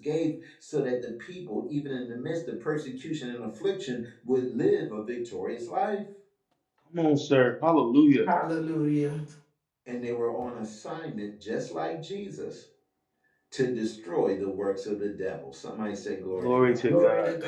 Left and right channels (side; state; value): both; identical; correlation 1.00